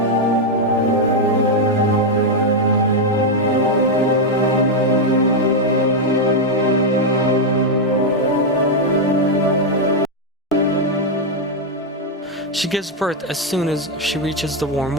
She gives birth as soon as she reaches the warm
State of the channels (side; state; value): both; normal; correlation 0.01